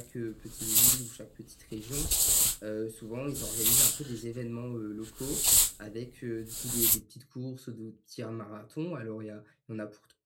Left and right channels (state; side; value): identical; both; correlation 1.00